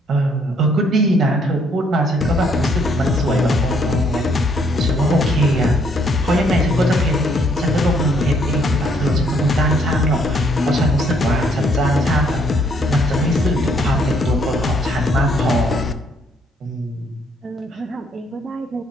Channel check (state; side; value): normal; both; correlation 0.67